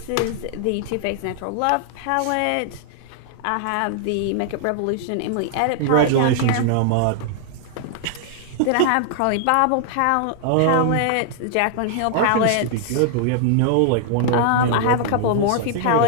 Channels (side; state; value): both; different; correlation 0.00